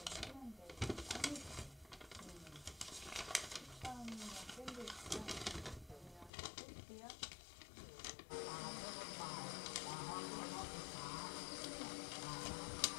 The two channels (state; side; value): drops out; right; at 6.3 s